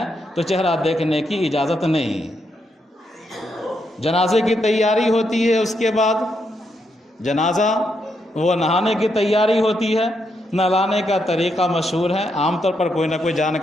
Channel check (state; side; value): normal; both; correlation 0.80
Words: تو چہرہ دیکھنے کی اجازت نہیں۔ جنازے کی تیاری ہوتی ہے، اس کے بعد جنازہ وہ نہانے کی تیاری ہوتی ہے۔ نہلانے کا طریقہ مشہور ہے، عام طور پر کوئی نہ کوئی